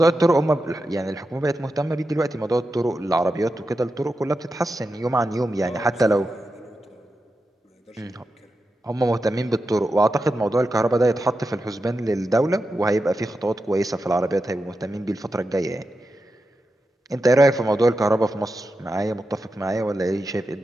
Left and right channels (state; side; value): normal; both; correlation 0.89